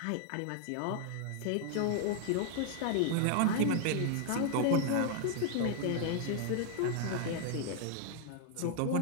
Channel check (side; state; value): both; different; correlation 0.00